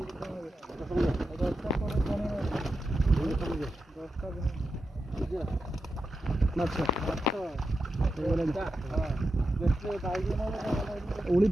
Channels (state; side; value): normal; both; correlation 0.89